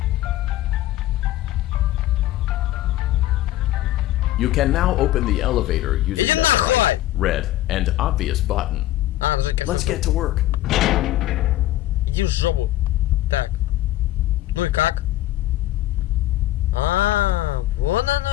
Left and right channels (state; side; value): quieter; right; 14.9 dB